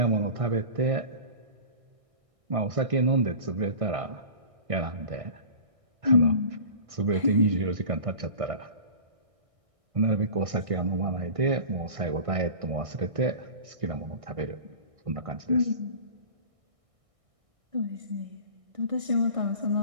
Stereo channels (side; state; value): left; late; 1.6 ms